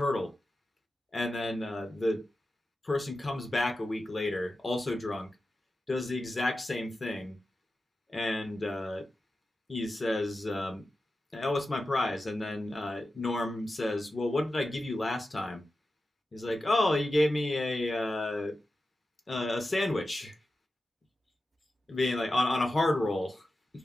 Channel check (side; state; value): both; normal; correlation 0.93